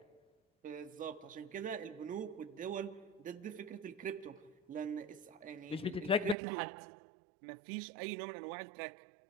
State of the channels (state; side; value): drops out; left; at 6.4 s